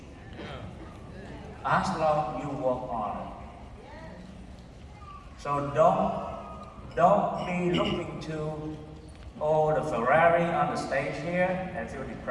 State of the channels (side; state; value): both; identical; correlation 1.00